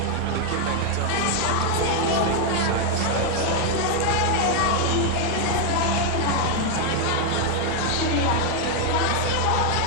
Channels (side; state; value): both; different; correlation 0.01